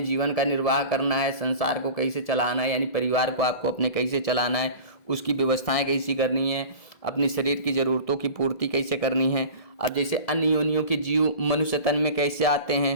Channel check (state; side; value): late; right; 1.6 ms